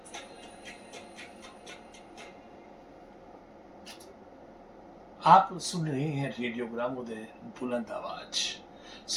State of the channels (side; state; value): both; identical; correlation 1.00